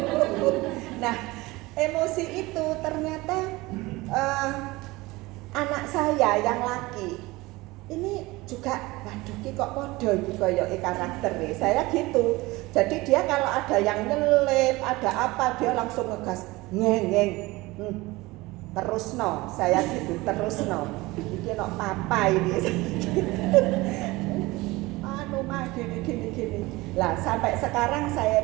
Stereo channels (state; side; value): quieter; left; 21.1 dB